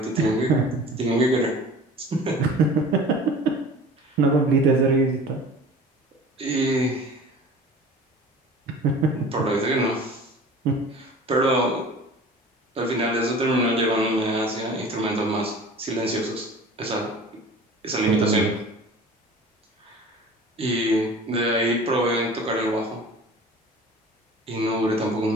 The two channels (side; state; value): both; normal; correlation 0.42